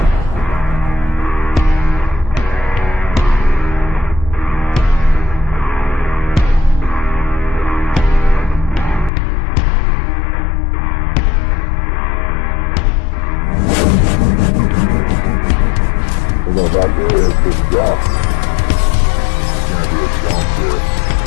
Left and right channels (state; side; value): drops out; right; at 9.1 s